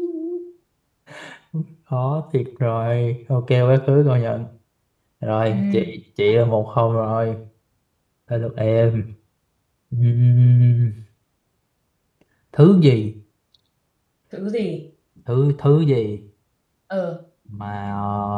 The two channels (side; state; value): both; identical; correlation 1.00